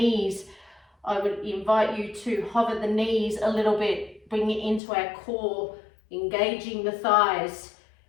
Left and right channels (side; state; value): right; drops out; at 4.8 s